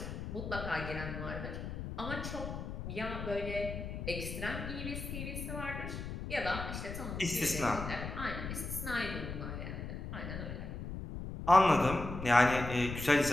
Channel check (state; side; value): noise; left; rumble, 6 dB below the sound